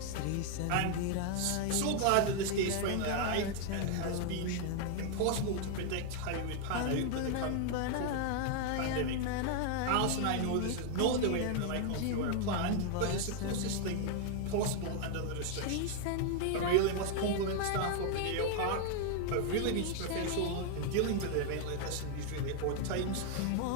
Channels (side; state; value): both; different; correlation 0.00